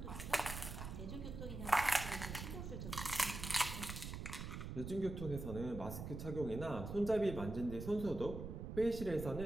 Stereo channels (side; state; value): right; noise; rumble, 7 dB below the sound